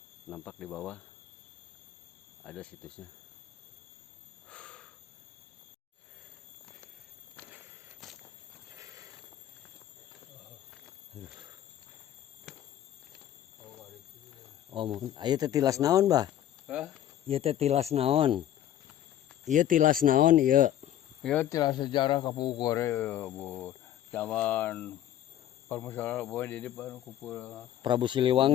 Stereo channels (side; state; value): right; quieter; 11.7 dB